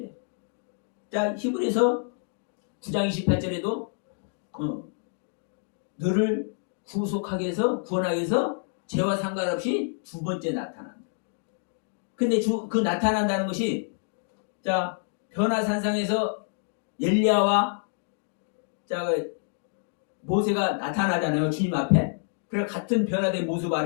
해요. 자, 히브리서 9장 28절에도 너를 구속하게 해서 구원하게 해서 죄와 상관없이 두 번째 나타난다. 근데 그 나타난다는 것이, 자, 변화산상에서 엘리야와 모세가 나타나잖아요. 주님 앞에. 그래 같은 변화된 모습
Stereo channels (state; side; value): silent; right; digital silence